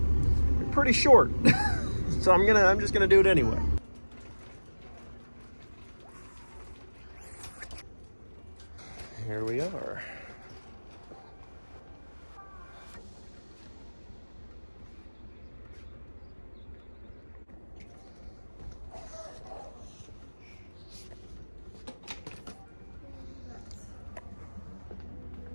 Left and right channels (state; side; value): inverted; both; correlation -1.00